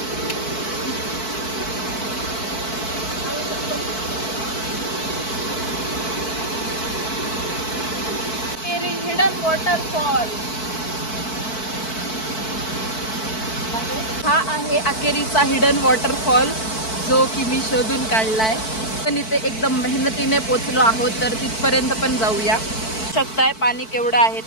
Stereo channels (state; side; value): late; right; 4.5 ms